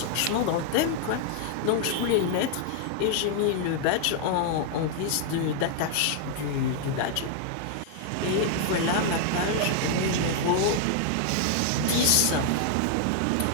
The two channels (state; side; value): different; both; correlation 0.00